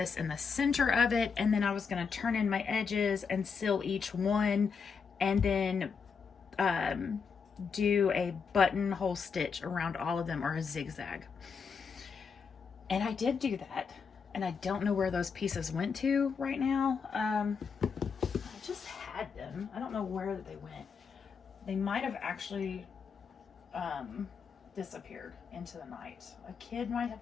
in the center of it, and then I was going to turn in my edges and seal each one, and then do a buttonhole stitch around all of them, or a zigzag. And I did do that, and I don't know where those pieces went to right now. I just had them. I don't know where they went. They might have actually disappeared into the night. A kid might have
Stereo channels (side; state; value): right; quieter; 5.8 dB